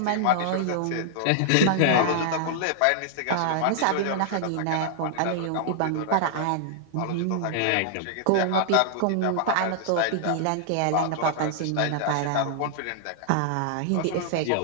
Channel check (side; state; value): both; different; correlation -0.01